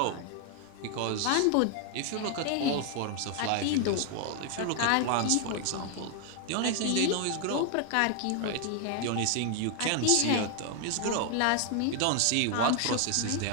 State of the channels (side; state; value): both; different; correlation 0.00